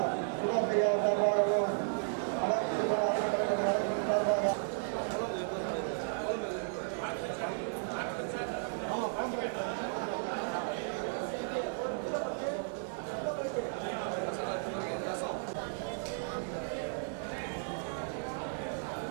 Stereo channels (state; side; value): silent; left; digital silence